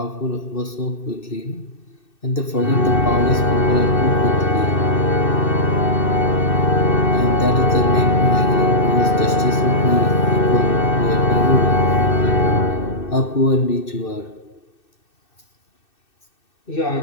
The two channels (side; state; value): right; late; 2.6 ms